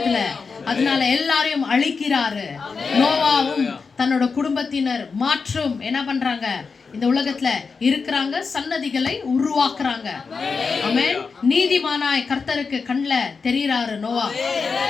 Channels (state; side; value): quieter; right; 5.0 dB